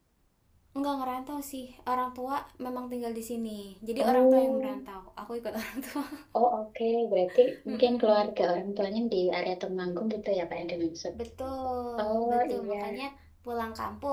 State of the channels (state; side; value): identical; both; correlation 1.00